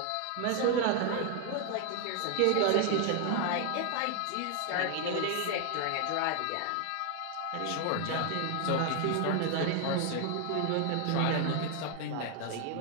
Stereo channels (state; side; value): different; both; correlation 0.00